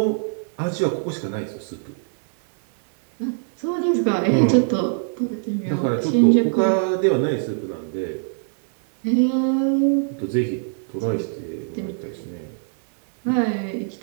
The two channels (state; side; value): silent; left; digital silence